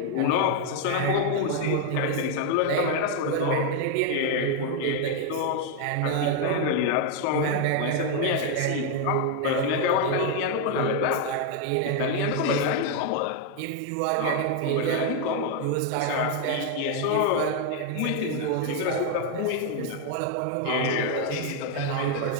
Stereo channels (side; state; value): both; different; correlation 0.00